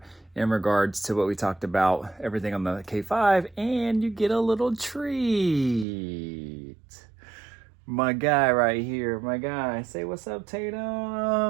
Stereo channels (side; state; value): left; drops out; at 5.9 s